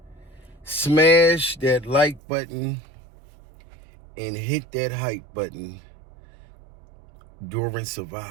Smash that like button and hit that hype button during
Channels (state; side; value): drops out; left; at 2.2 s